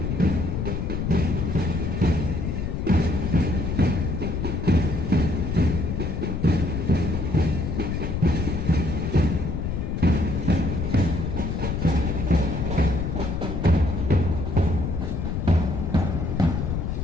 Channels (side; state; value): left; noise; rumble, 2 dB below the sound